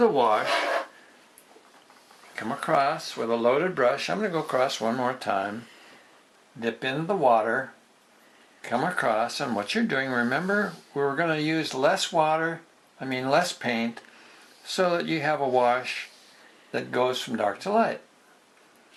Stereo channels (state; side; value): identical; both; correlation 1.00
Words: wash, come across with a loaded brush. I'm going to go across one more time. Dip into the water. Come across, and what you're doing, remember, we're going to use less paint, so that you have a wash that goes from dark to light.